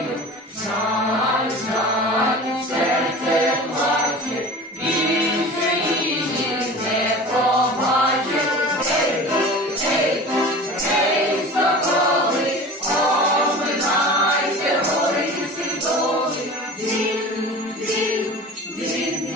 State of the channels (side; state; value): both; normal; correlation 0.37